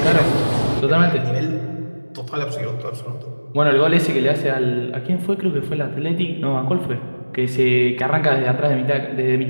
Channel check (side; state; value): both; inverted; correlation -1.00